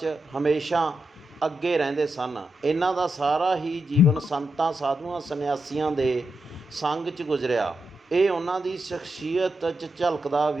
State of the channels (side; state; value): both; normal; correlation 0.86